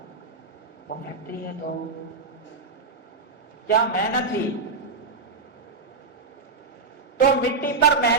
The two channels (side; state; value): left; quieter; 4.2 dB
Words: وہ فیکٹری ہے، تو کیا محنت تھی؟ تو مٹی پر